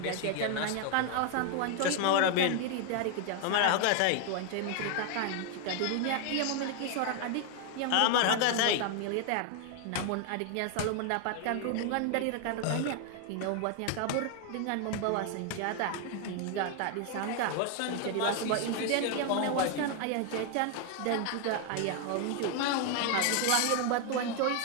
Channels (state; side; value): different; both; correlation 0.01